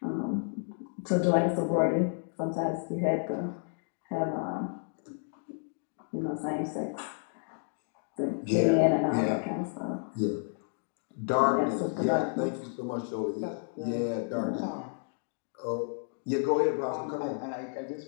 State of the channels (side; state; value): right; silent; 57 dB below the other